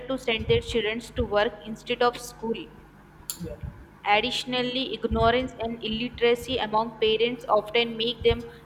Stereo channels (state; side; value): identical; both; correlation 1.00